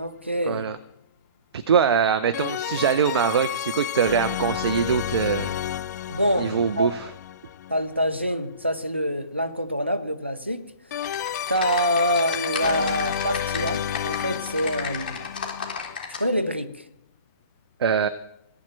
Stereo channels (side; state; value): both; inverted; correlation -0.43